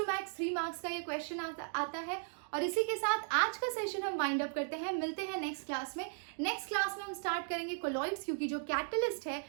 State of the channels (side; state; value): left; silent; digital silence